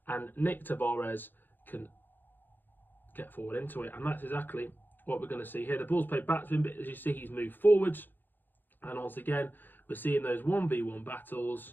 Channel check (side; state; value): right; late; 0.091 ms